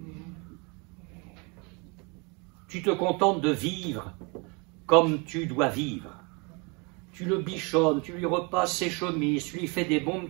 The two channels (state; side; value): quieter; left; 31.0 dB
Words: Tu te contentes de vivre comme tu dois vivre. Tu le bichonnes, tu lui repasses ses chemises, tu lui fais des bons